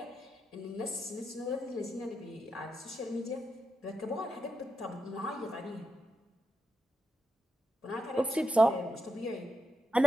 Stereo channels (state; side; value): normal; both; correlation 0.86